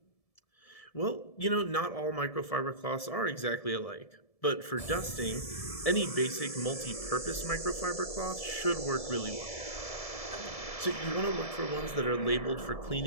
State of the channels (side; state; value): right; late; 1.7 ms